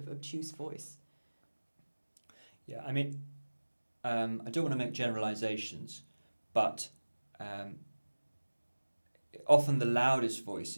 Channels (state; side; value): inverted; both; correlation -1.00